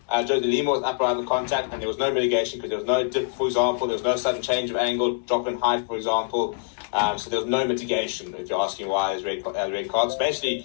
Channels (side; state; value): right; silent; digital silence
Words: Joe De Lima, was upright in the contact, and there was no mitigation because there was no dip, for example. There was no sudden change of angle, drop in height, for example. So there was no mitigation, if you're asking why there's red cards. Basically,